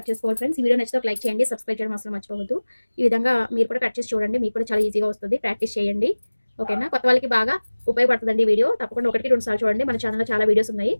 చేసుకోవాలి ఫ్రెండ్స్. ఈ వీడియో నచ్చితే ఒక లైక్ చేయండి, సబ్స్క్రైబ్ చేయడం అసలు మర్చిపోవద్దు. ఈ విధంగా మీరు కూడా కట్ చేసి చూడండి, మీకు కూడా చాలా ఈజీగా వస్తుంది. ప్రాక్టీస్ చేయండి. ఓకేనా? కొత్త వాళ్ళకి బాగా ఉపయోగపడుతుందండి ఈ వీడియో. తప్పకుండా 1-2 సార్లు చూడండి. మన ఛానల్లో చాలా వీడియోస్ ఉన్నాయి.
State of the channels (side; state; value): both; inverted; correlation -1.00